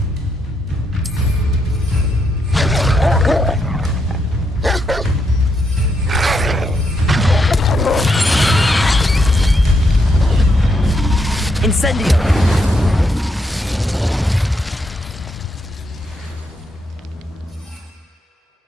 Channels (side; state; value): both; normal; correlation 0.79